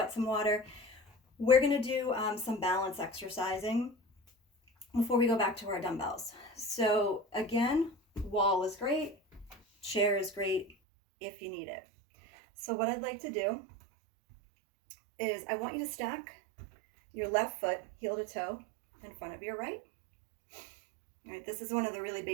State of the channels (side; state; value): left; drops out; at 10.8 s